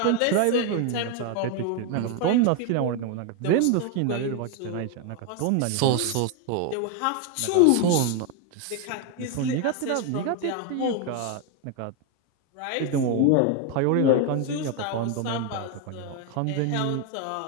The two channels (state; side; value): different; both; correlation 0.01